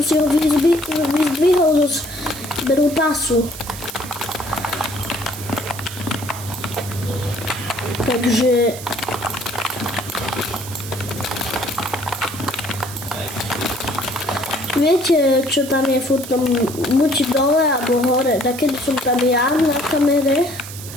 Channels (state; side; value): noise; right; hiss, 12 dB below the sound